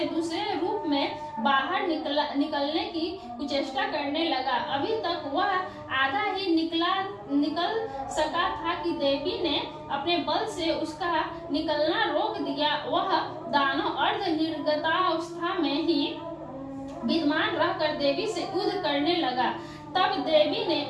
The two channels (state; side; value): identical; both; correlation 1.00